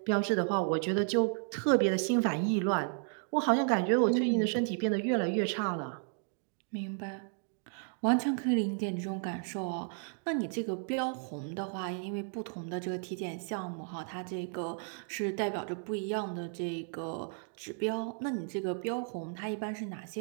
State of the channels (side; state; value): left; silent; 56 dB below the other